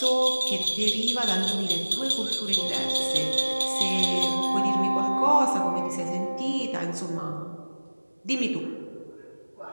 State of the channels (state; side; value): inverted; both; correlation -1.00